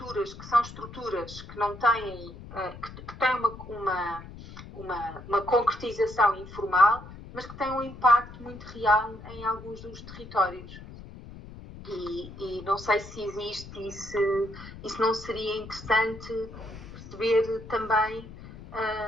que são estruturas que não têm, que têm uma concretização informal, mas que têm um impacto muito real em alguns dos territórios. E não sei se existe e se não seria interessante perceber também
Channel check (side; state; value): left; noise; rumble, 15 dB below the sound